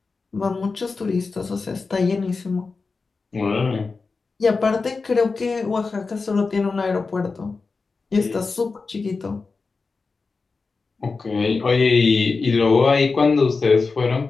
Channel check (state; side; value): quieter; right; 4.3 dB